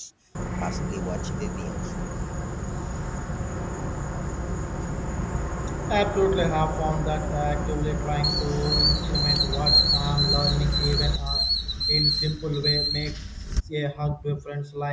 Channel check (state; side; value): identical; both; correlation 1.00